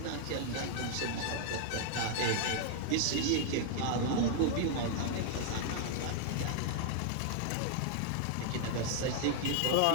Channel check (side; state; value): both; different; correlation 0.00